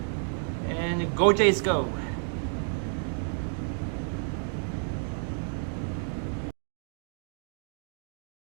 And go Jays go.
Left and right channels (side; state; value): left; silent; 57 dB below the other